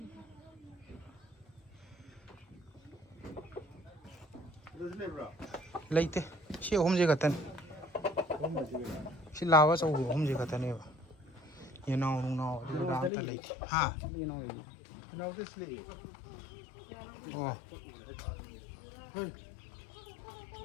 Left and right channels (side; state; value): right; drops out; at 13.1 s